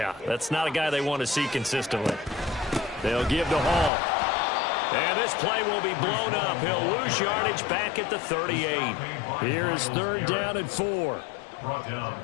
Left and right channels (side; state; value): right; drops out; at 3.9 s